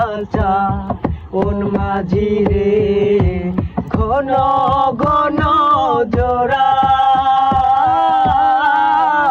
মন মাঝি রে ঘন ঘন জোড়া।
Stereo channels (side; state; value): both; identical; correlation 1.00